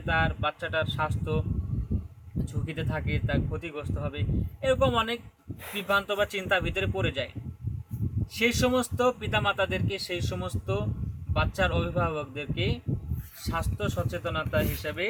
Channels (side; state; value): both; identical; correlation 1.00